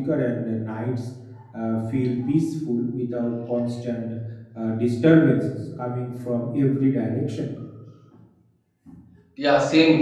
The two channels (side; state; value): both; identical; correlation 1.00